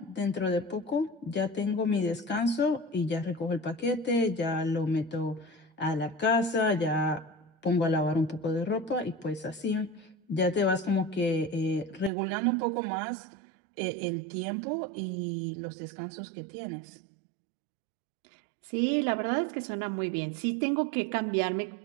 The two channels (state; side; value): drops out; left; at 12.1 s